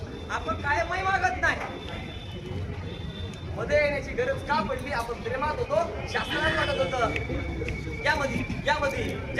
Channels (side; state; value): both; identical; correlation 1.00